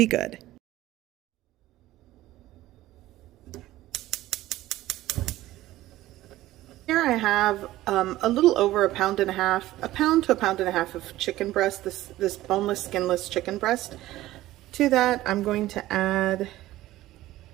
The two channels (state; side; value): quieter; left; 15.8 dB